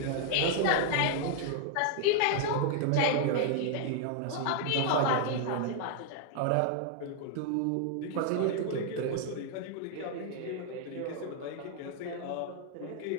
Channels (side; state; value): both; different; correlation 0.00